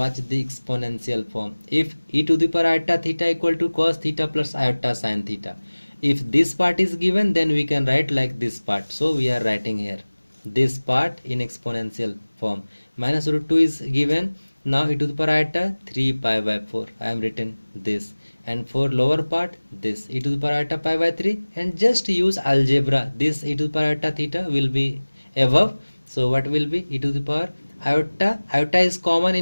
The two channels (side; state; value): both; inverted; correlation -1.00